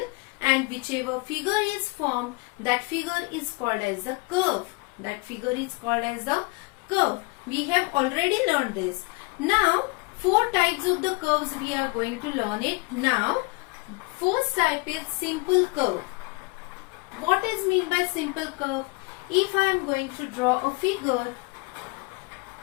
and whichever figure is formed, that figure is called as a curve. That figure is called as a curve. We have already learned this. Now, four types of the curves we are going to learn it now. First type is simple curve. What is mean by simple curve? If I am going to draw a figure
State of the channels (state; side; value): quieter; right; 27.9 dB